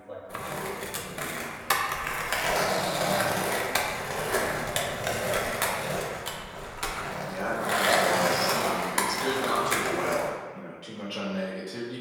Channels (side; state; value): both; identical; correlation 1.00